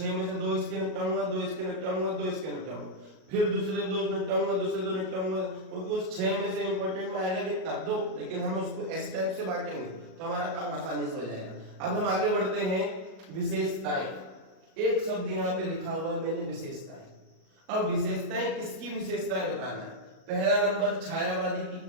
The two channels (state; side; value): late; left; 38 ms